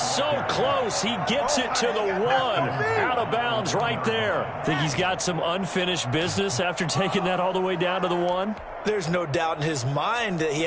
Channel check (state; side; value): identical; both; correlation 1.00